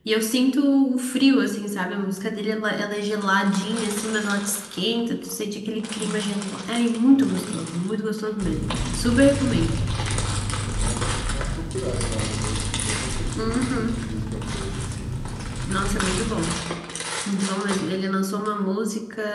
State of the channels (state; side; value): identical; both; correlation 1.00